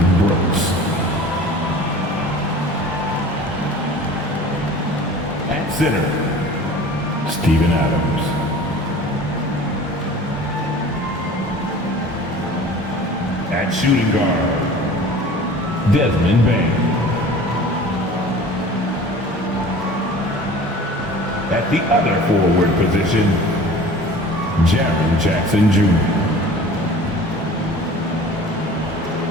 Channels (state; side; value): normal; both; correlation 0.43